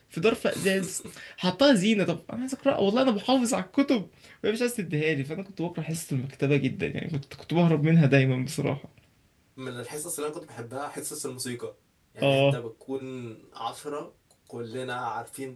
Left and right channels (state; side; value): identical; both; correlation 1.00